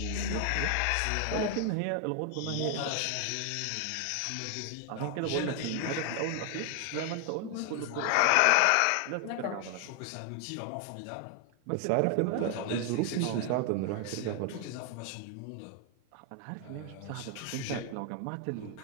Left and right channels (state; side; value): different; both; correlation 0.00